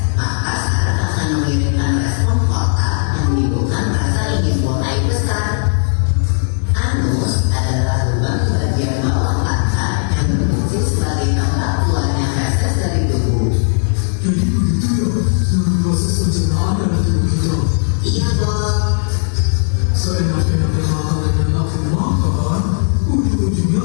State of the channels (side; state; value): right; silent; digital silence